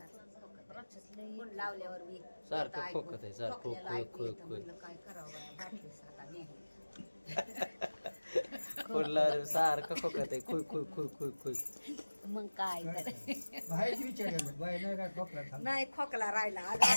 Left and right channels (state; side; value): inverted; both; correlation -1.00